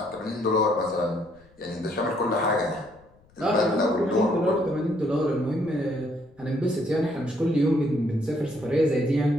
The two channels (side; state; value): left; noise; rumble, 29 dB below the sound